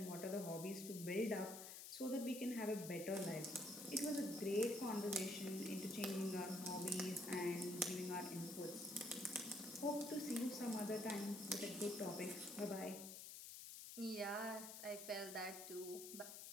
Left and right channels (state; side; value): noise; left; hiss, 9 dB below the sound